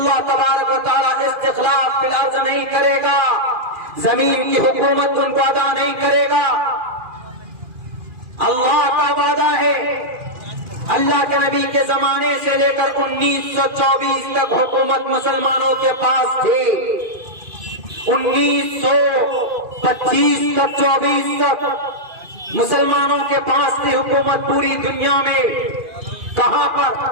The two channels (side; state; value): left; late; 2.4 ms